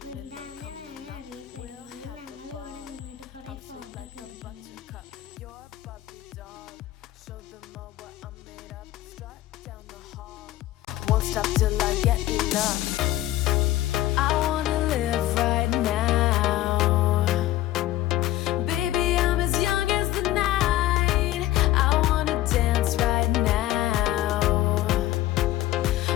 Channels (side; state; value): right; quieter; 15.0 dB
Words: വൃന്ദാവനമാണ് അറിയപ്പെടുന്നത്. ഞങ്ങൾ ഇവിടെ നിന്നിട്ട് കുറേ ഫോട്ടോ ഒക്കെ എടുക്കുന്നു. Won't stop till I get enough. I wanna